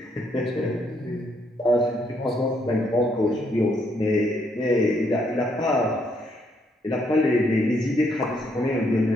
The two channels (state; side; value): normal; both; correlation 0.73